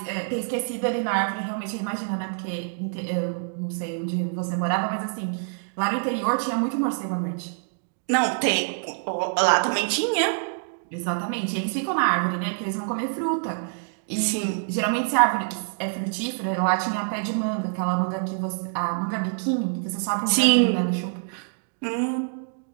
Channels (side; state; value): left; silent; digital silence